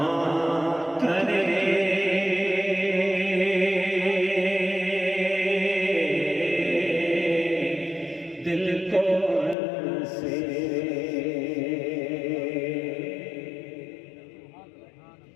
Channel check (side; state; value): right; drops out; at 9.6 s